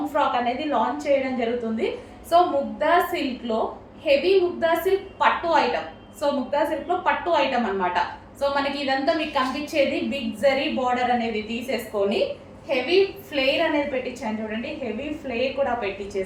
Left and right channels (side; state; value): both; identical; correlation 1.00